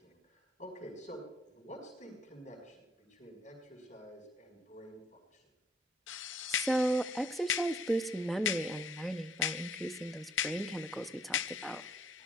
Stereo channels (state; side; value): normal; both; correlation 0.63